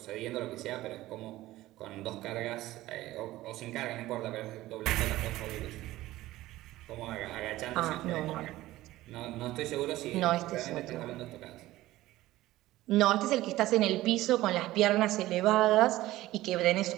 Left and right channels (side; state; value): left; quieter; 16.6 dB